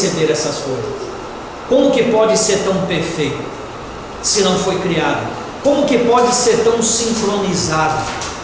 essas coisas. Como que pode ser tão perfeito, se não foi criado? Como que pode ser tão sincronizado,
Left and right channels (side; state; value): both; identical; correlation 1.00